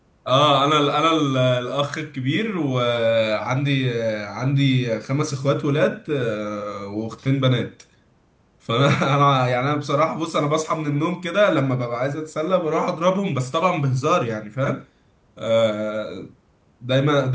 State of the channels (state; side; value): identical; both; correlation 1.00